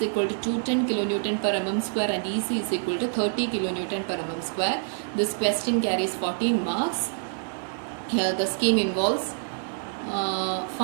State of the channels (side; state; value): left; silent; digital silence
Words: equal to 210 kilonewton per mm square and EC is equal to 30 kilonewton per mm square. This question carries 14 marks. Here the scheme involves